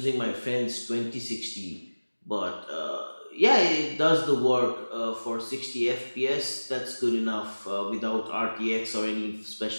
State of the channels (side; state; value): both; inverted; correlation -1.00